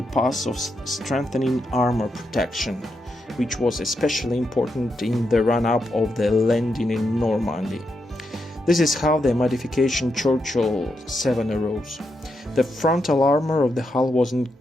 path of strengthening armor protection, which was especially important in the run-up of the landing in Normandy. This is how the modification Churchill 7 arose. The frontal armor of the hull was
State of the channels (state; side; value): normal; both; correlation 0.83